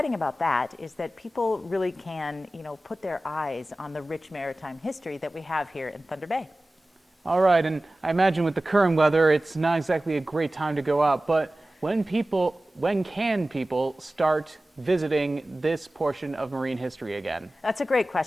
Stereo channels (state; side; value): normal; both; correlation 0.97